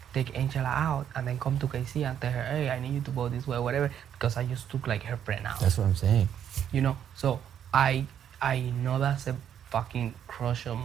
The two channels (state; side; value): quieter; left; 9.4 dB